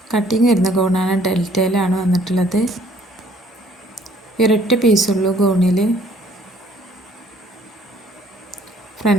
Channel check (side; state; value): both; normal; correlation 0.60